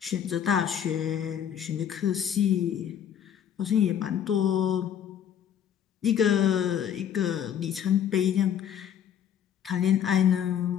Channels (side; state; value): right; quieter; 9.2 dB